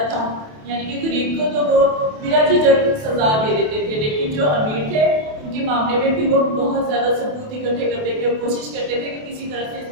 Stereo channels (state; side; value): late; left; 27 ms